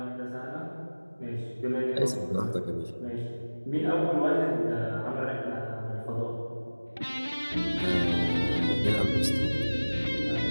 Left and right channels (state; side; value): inverted; both; correlation -1.00